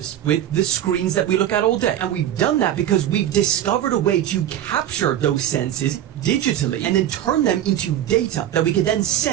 with the screens that we look at all day. And we've done that because we've discovered a way to capture those senses digitally and then turn them into data that we can then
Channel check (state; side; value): quieter; left; 11.3 dB